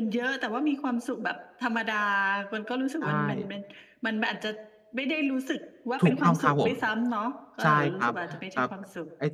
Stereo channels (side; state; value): both; identical; correlation 1.00